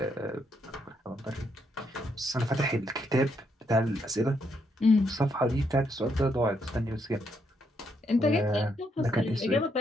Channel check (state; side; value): normal; both; correlation 0.76